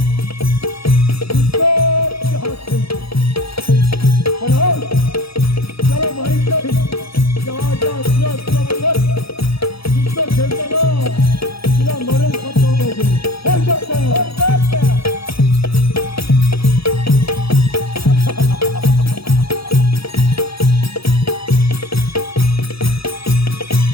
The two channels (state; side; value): late; right; 0.76 ms